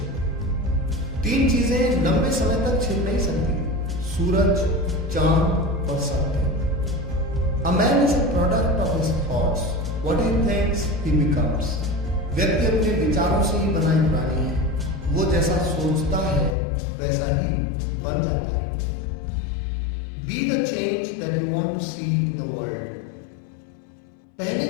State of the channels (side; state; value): right; drops out; at 16.6 s